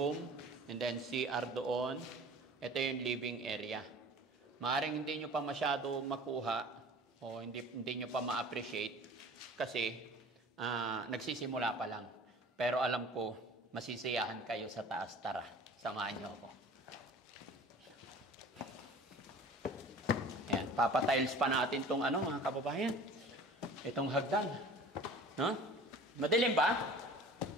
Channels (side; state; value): both; normal; correlation 0.44